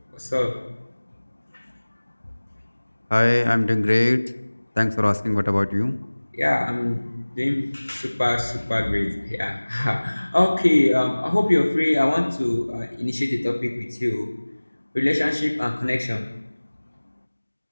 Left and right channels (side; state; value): both; inverted; correlation -1.00